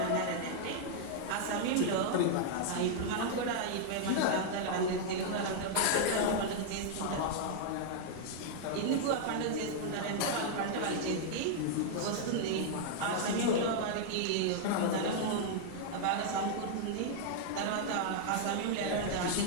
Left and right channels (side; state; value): both; different; correlation -0.01